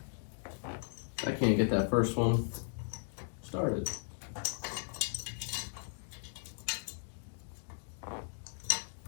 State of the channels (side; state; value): right; silent; digital silence